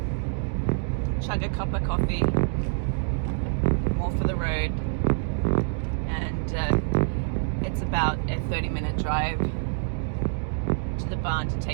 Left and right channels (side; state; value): left; silent; digital silence